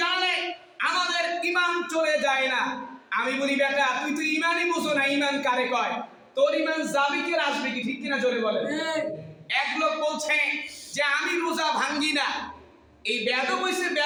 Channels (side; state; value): both; identical; correlation 1.00